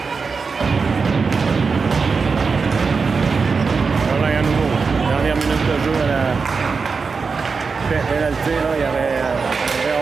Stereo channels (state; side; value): quieter; left; 4.9 dB